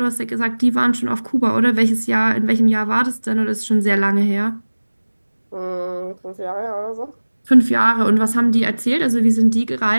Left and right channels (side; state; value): both; inverted; correlation -1.00